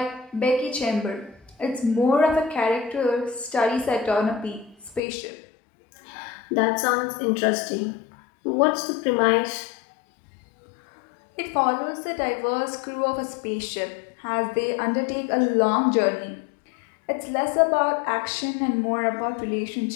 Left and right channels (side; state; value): right; drops out; at 5.0 s